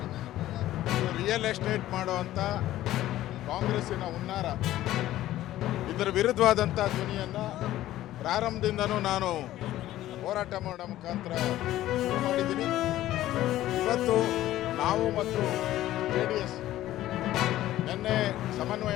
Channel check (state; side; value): quieter; right; 14.3 dB